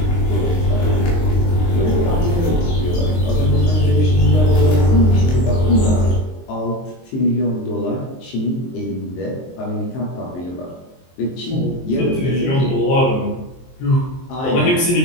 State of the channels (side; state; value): right; late; 23 ms